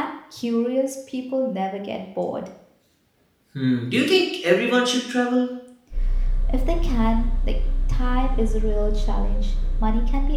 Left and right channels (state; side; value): identical; both; correlation 1.00